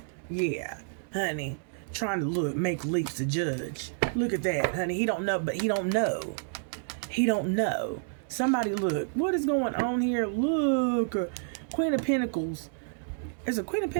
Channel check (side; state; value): left; silent; digital silence